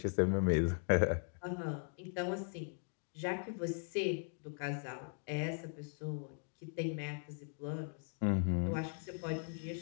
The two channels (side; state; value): right; silent; 52 dB below the other